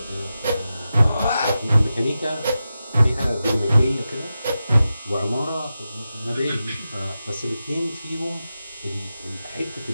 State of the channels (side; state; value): both; inverted; correlation -0.92